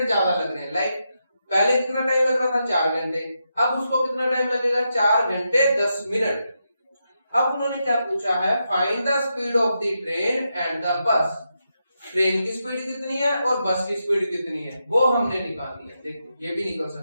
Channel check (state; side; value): inverted; both; correlation -0.85